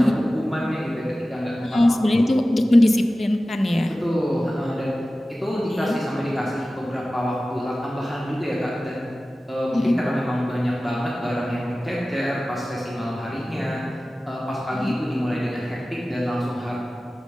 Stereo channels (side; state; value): both; normal; correlation 0.96